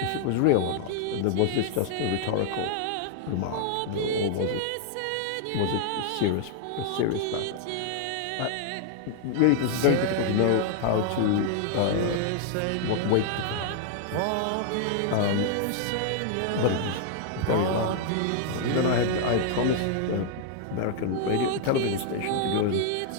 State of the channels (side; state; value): both; different; correlation 0.00